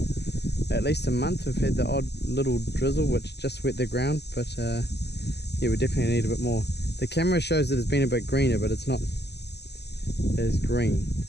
at least a month. We've had the odd little drizzle which just wet the ground, but yeah, we definitely need a bit more. The camera shows that it's been a bit greener, but it's not as green.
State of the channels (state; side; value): late; right; 0.49 ms